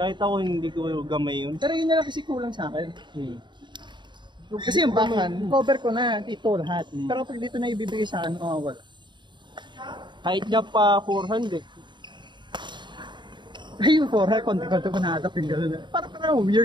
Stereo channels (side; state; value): left; late; 0.22 ms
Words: ako hindi ko gamay yun. Pero yun na lang kasi kulang sa akin. Kasi yung backhand, cover ko na dito lahat. Pero pag dito na ibibigay sa akin, wala. Kahit niya pa 400. Ay, yung 400, konti-konti ko na-adapt yung gano'n. Parang